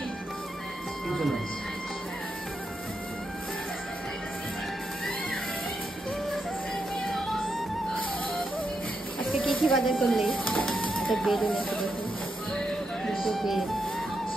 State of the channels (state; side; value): normal; both; correlation 0.83